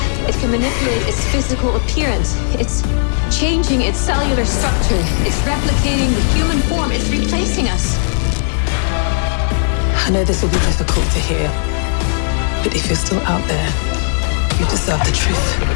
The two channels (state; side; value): silent; right; digital silence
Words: It can manipulate its physical appearance. It's changing its cellular structure. It's replicating the human form. It's replacing us. I know this will be difficult to hear, but if you're still out there, you deserve the